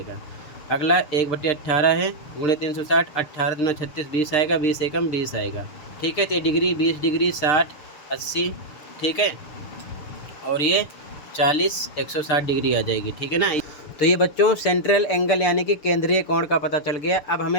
अगला 1 बटे 18 है, गुणे 360, 18 दूना 36, 20 आएगा, 20 एकम 20 आएगा। ठीक है, तो ये डिग्री 20 डिग्री 60 80। ठीक है, और ये 40 160 डिग्री आ जाएगी। ठीक है ना। तो ये बच्चों सेंट्रल एंगल यानी कि केंद्रीय कोण का पता चल गया। अब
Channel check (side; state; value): right; late; 6.9 ms